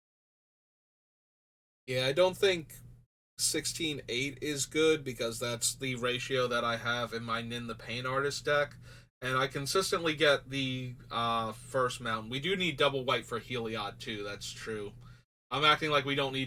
Yeah, I don't think 16-8 is good because that's the ratio that I have in my Nin the Pain Artist deck. And I consistently get the first mountain. We do need double white for Heliod too, that's true. I'm acting like we don't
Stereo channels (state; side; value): identical; both; correlation 1.00